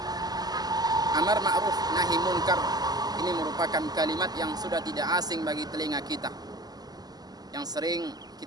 Amar ma'ruf nahi munkar ini merupakan kalimat yang sudah tidak asing bagi telinga kita, yang sering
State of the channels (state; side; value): late; left; 0.19 ms